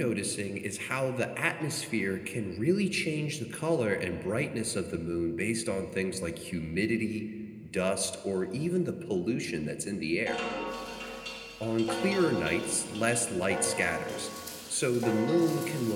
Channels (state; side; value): identical; both; correlation 1.00